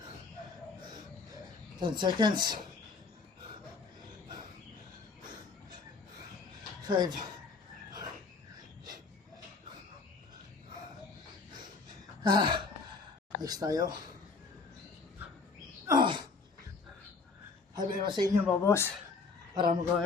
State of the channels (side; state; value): right; quieter; 4.4 dB